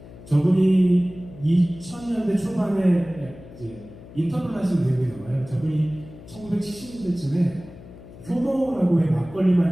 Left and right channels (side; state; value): left; noise; hum, 18 dB below the sound